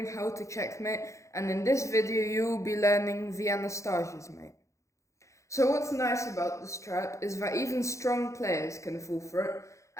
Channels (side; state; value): right; late; 0.15 ms